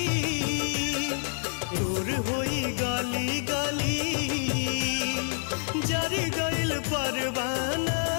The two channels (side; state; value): right; silent; 59 dB below the other